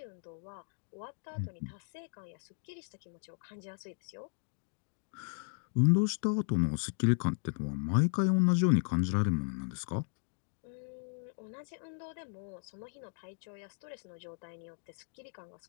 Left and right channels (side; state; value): right; silent; 54 dB below the other